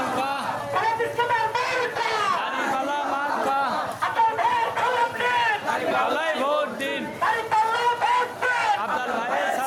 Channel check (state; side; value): identical; both; correlation 1.00